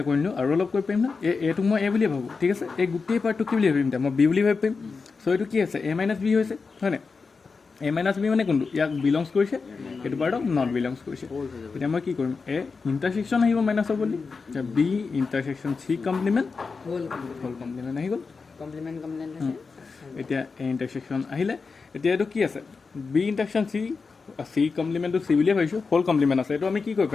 কৰি নিওঁ আৰু অলপ কৰিব পাৰিম না এইটোক মই এ বুলিয়ে ভাবোঁ ঠিক আছে এই গোটেই পাৰ্টটো কি বুলি ভাবিম এতিয়া মই বি বুলি ভাবি পাৰিম চ' এইটো কি আছে এ মাইনাছ বি হৈছে হয়নে এ মাইনাছ বি মানে কোনটো ইয়াক বিলংছ কৰিছে এইটো পাৰ্টক নট বিলংছ কৰিছে এতিয়া মই কি কৰিম এ ইণ্টাৰছেকশ্যন আহিব মাইনাছৰ বুলি B intersection C complement whole complement আহি গ'ল এতিয়া এ ইণ্টাৰছেকশ্যন আহিলে এতিয়া এইটো কি আছে বি ইণ্টাৰছেকশ্যন চি কমপ্লিমেণ্টটো চি বুলিয়ে ভাবিছোঁ হোল কমপ্লিমেণ্ট আছে এইটো আমি কি কৰিব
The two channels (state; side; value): quieter; right; 4.7 dB